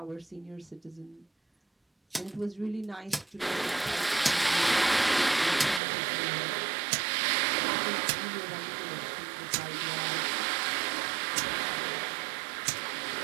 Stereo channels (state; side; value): drops out; left; at 5.8 s